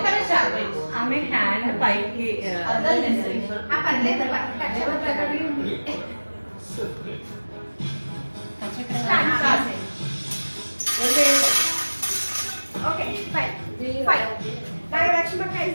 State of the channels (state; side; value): inverted; both; correlation -1.00